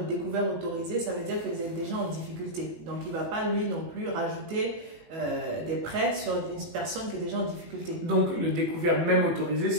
découvert autorisé, ça veut dire que vous êtes déjà en difficulté. Donc, il ne va pas, lui non plus, rajouter des prêts sur une personne qui est déjà en difficulté. Donc, le découvert même autorisé,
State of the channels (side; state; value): left; late; 18 ms